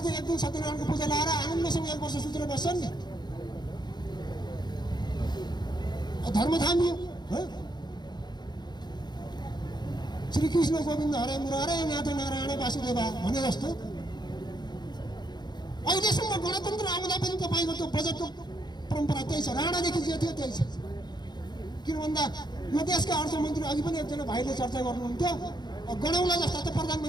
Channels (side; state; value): right; late; 0.21 ms